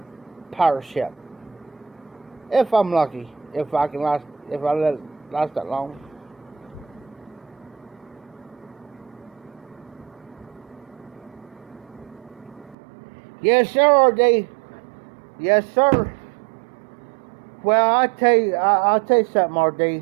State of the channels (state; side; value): drops out; left; at 12.8 s